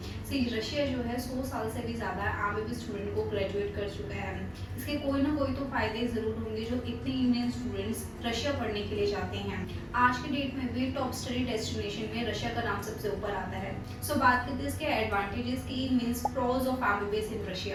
Russia जो है 100 साल से भी ज़्यादा एमबीबीएस स्टूडेंट को ग्रेजुएट कर चुका है। इसके कोई ना कोई तो फायदे ज़रूर होंगे जो इतने इंडियन स्टूडेंट्स रशिया पढ़ने के लिए जाते हैं। आज के डेट में भी टॉप स्टडी डेस्टिनेशन में रशिया का नाम सबसे ऊपर आता है। बात करते हैं इसके एडवांटेजेस की, means pros of MBBS in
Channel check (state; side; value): identical; both; correlation 1.00